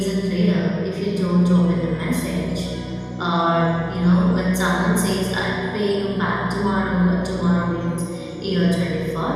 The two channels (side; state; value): both; identical; correlation 1.00